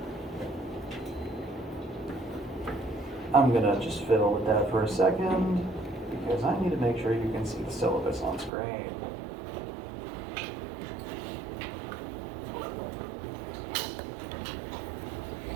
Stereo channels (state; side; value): drops out; left; at 8.5 s